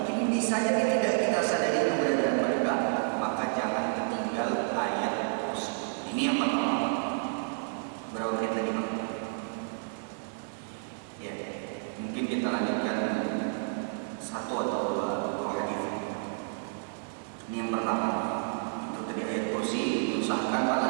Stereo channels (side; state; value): left; silent; digital silence